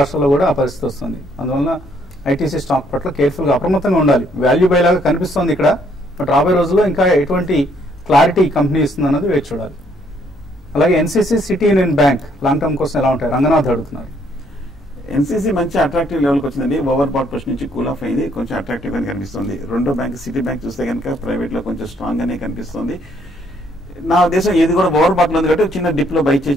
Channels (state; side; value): normal; both; correlation 0.68